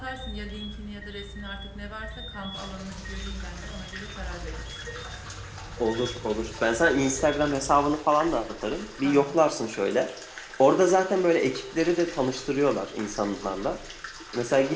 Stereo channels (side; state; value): both; identical; correlation 1.00